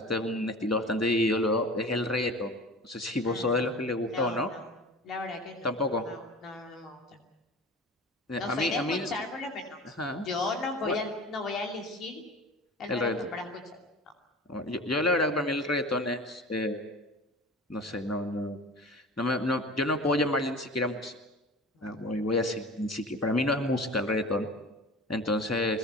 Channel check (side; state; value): both; normal; correlation 0.38